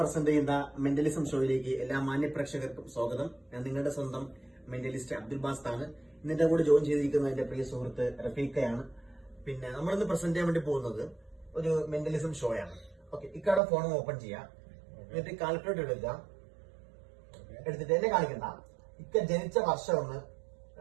ചെയ്യുന്ന മെന്റലിസം ഷോയിലേക്ക് എല്ലാ മാന്യ പ്രേക്ഷകർക്കും സ്വാഗതം. ഞാൻ നിങ്ങളുടെ സ്വന്തം മെന്റലിസ്റ്റ് അബ്ദുൽ ബാസ് ആണ്. ഇന്നിന്റെ കൂടെ ജോയിൻ ചെയ്തിരിക്കുന്ന എന്റെ പ്രിയ സുഹൃത്ത് റഫീഖയാണ്. പിന്നെ നമ്മളിന്ന് പ്രസന്റ് ചെയ്യാൻ വേണ്ടി പോകുന്നത് ഒരു മെന്റലിസം ഷോ ആണ്. ഓക്കെ, ഇക്കാടെ ഫോൺ ഓപ്പൺ ചെയ്യാം, എന്നിട്ട് കാൽക്കുലേറ്റർ എടുക്കുക. എടുത്തിട്ട് എന്നെ കാണിക്കണ്ട, ഇക്ക ജനിച്ച വർഷം ഒന്ന്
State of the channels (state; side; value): drops out; left; at 13.6 s